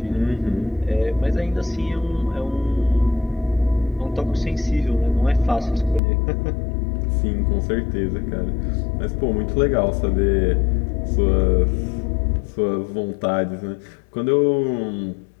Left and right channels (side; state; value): right; drops out; at 6.0 s